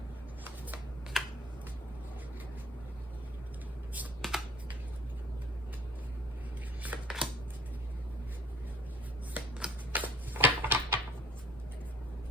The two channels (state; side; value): normal; both; correlation 0.50